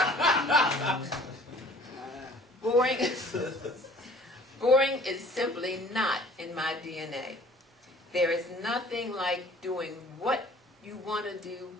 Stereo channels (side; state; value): both; normal; correlation 0.51